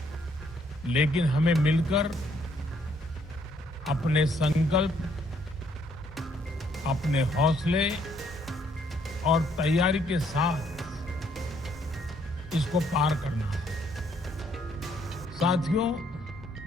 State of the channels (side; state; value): both; normal; correlation 0.68